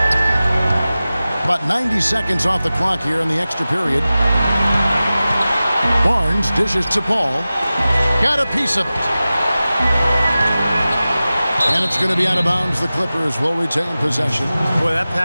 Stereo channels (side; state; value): both; inverted; correlation -0.96